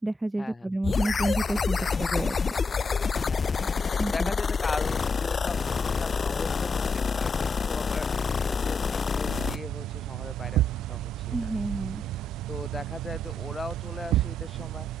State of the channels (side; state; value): both; normal; correlation 0.80